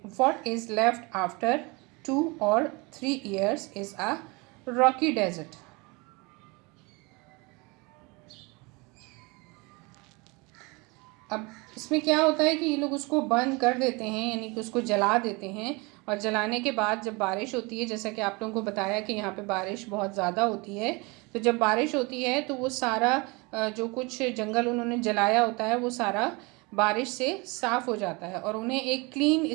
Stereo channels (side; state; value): left; quieter; 27.0 dB